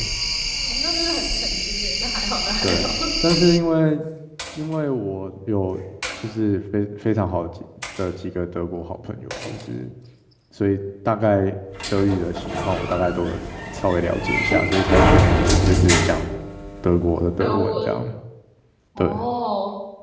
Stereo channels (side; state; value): both; identical; correlation 1.00